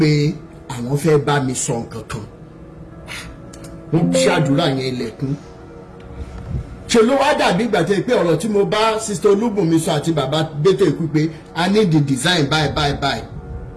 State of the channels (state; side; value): identical; both; correlation 1.00